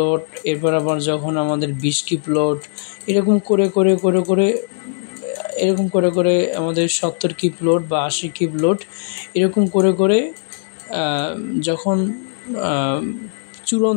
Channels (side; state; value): right; silent; digital silence